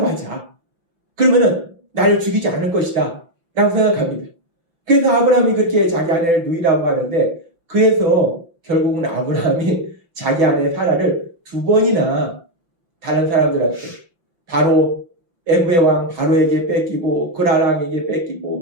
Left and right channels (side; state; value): left; late; 5.9 ms